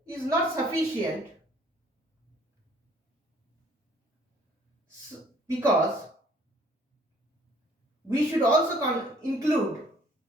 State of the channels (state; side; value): normal; both; correlation 0.58